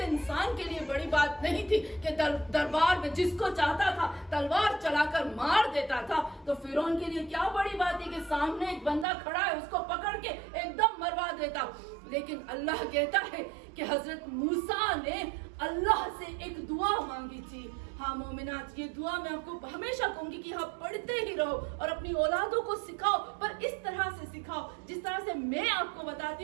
انسان کے لیے بڑی بات نہیں تھی کہ دربار میں جس کو چاہتا تھا تلوار چلا کر مار دیتا تھا. تو فرعون کے لیے کیا بڑی بات تھی کہ سامنے ایک بندہ کھڑا ہے, اس کو پکڑ کے ایک دم مروا دیتا. لیکن اللہ کہتا ہے کہ حضرت موسیٰ نے اللہ سے ایک دعا مانگی تھی. ہاں مومنات, یہ دعا میں آپ کو ہمیشہ کہوں گی کہ آپ پڑھتے ہی رہو اور اپنی اولادوں کو سکھاؤ, پر اس طرح سے سکھاؤ جس طرح سے میں آپ کو بتاتی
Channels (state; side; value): drops out; left; at 9.1 s